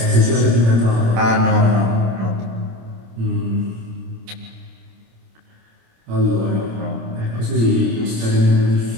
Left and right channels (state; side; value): late; left; 26 ms